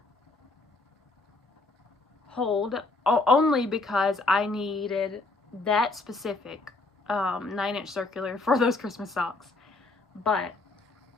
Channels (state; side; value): quieter; right; 3.3 dB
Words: hold only because I needed that specific 9-inch circular for those Christmas socks. But